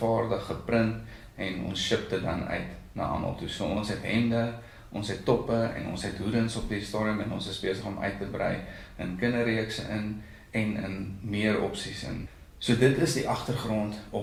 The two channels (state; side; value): identical; both; correlation 1.00